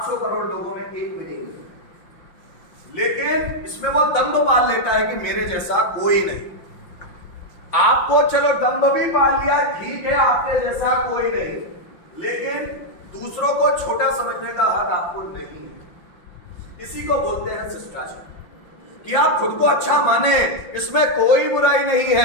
करोड़ लोगों में एक भी नहीं है। लेकिन इसमें वो दंभ पाल लेता है कि मेरे जैसा कोई नहीं। आपको चलो दंभ भी पाल लिया, ठीक है, आपके जैसा कोई नहीं, लेकिन दूसरों को छोटा समझने का हक आपको नहीं है। इसी को बोलते हैं शिष्टाचार, कि आप खुद को अच्छा माने, इसमें कोई बुराई नहीं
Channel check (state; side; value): late; right; 5.7 ms